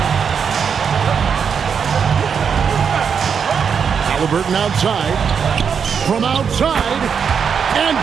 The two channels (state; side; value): quieter; left; 6.7 dB